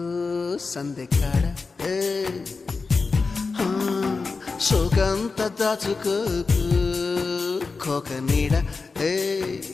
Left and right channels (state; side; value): quieter; right; 4.3 dB